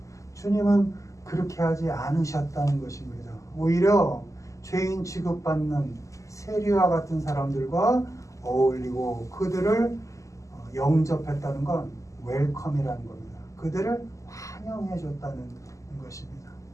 주님은 그렇게 하지 않으셨다는 것입니다. 오히려 죄인 취급받는 세리와 같은 사람들과 어울리고 그들을 영접했다는 건 웰컴이라는 겁니다. 그들을 환영해 줬다는 것입니다.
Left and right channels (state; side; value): late; right; 0.16 ms